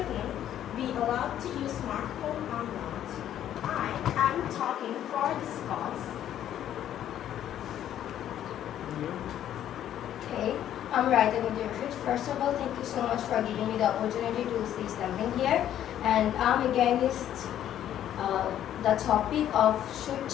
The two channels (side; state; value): right; quieter; 11.1 dB